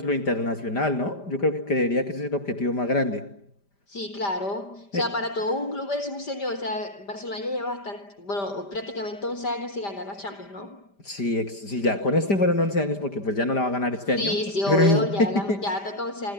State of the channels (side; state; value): right; late; 5.0 ms